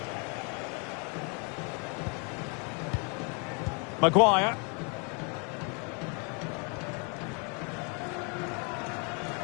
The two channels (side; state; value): right; quieter; 35.2 dB